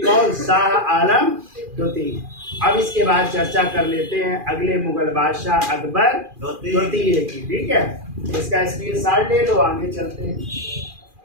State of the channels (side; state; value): left; late; 2.4 ms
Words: कौन? शाह आलम द्वितीय। अब इसके बाद चर्चा कर लेते हैं अगले मुगल बादशाह अकबर द्वितीय की। ठीक है, इसका स्क्रीनशॉट ले लो, आगे चलते हैं।